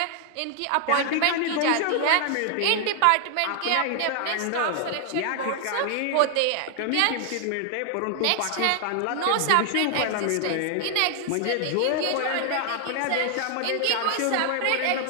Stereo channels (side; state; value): both; different; correlation 0.00